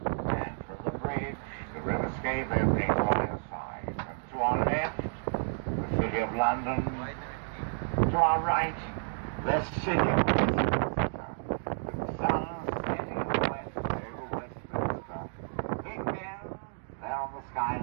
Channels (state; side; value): silent; left; digital silence